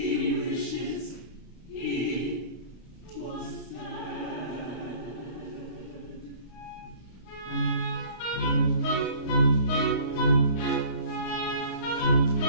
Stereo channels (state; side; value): late; right; 32 ms